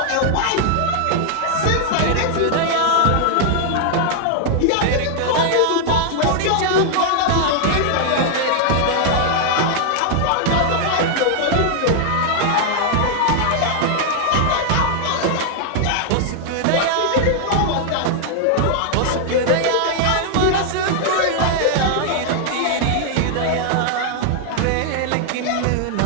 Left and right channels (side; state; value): both; different; correlation 0.00